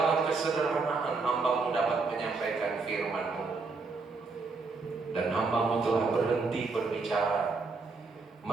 kesederhanaan hamba-Mu dapat menyampaikan firman-Mu, dan hamba-Mu telah berhenti berbicara.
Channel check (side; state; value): left; quieter; 4.1 dB